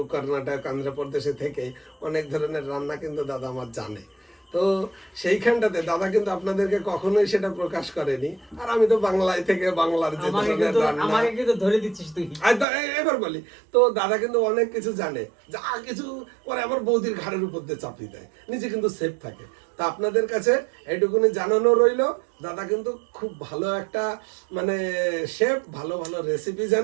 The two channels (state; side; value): drops out; left; at 12.7 s